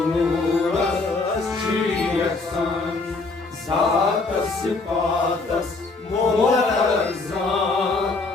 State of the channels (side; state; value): right; quieter; 3.7 dB